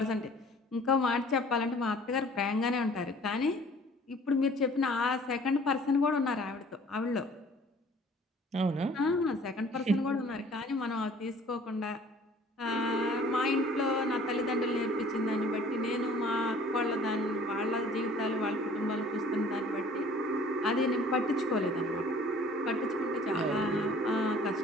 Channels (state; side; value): normal; both; correlation 0.52